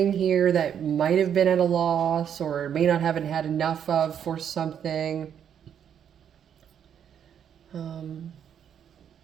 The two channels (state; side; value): quieter; left; 8.7 dB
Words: here that might have been at a loss or may not haven't had enough of for something. I